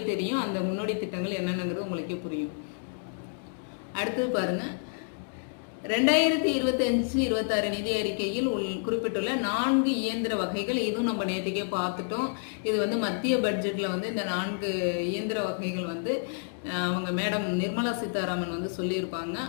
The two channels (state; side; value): silent; right; digital silence